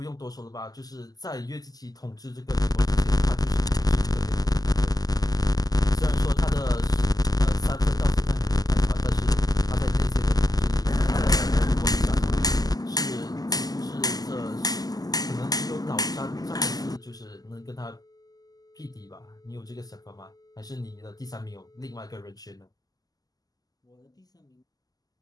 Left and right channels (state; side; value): late; right; 0.18 ms